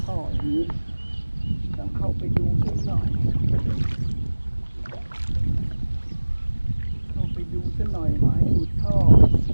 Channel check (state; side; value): inverted; both; correlation -1.00